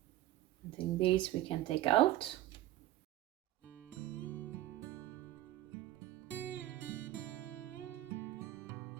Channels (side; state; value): left; quieter; 14.4 dB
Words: I think these we can take out.